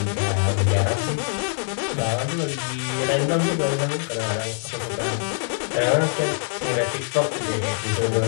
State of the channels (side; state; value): right; silent; 63 dB below the other